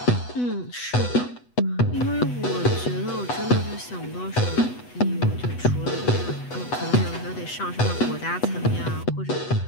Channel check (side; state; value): right; late; 8.1 ms